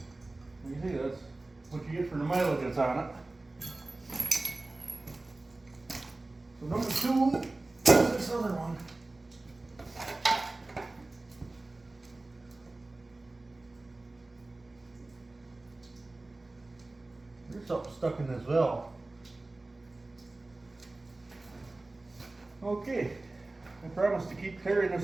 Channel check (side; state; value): left; quieter; 3.0 dB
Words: you can see that's what you get for the mileage that's on it. So number 2 is this other one. There's something stuck in this valve. Okay, I promised to keep tearing